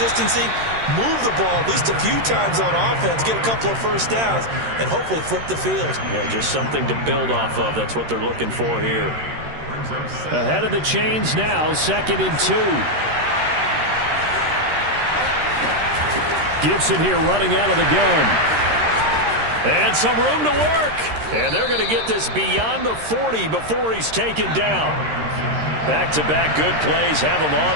move the ball at least a few times on offense, get a couple of first downs, and hopefully flip the field. Yeah, just something to build off of. That's what they're looking for here. Ahead of the chains now, 2nd and 2. Gibson here running out of the gun. And some room to work. And they're going to get this beyond the 40 before he's taken down. Back-to-back good plays have him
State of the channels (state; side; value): late; left; 13 ms